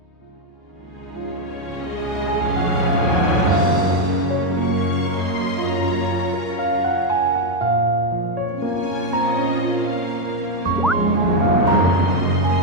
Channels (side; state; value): both; normal; correlation 0.04